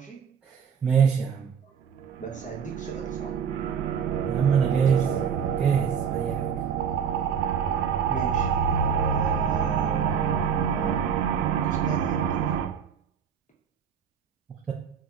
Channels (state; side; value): quieter; left; 7.3 dB